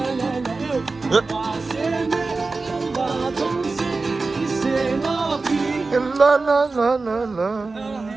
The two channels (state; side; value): quieter; left; 3.8 dB